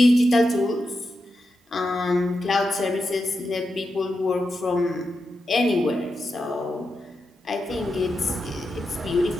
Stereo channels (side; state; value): both; normal; correlation 0.88